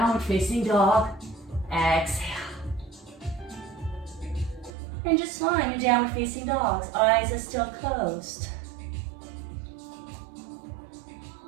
facing dog. Exhale. And just find your downward facing dogs. Eyes are still closed.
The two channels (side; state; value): left; drops out; at 4.8 s